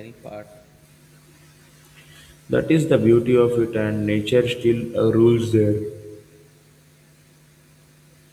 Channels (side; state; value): both; identical; correlation 1.00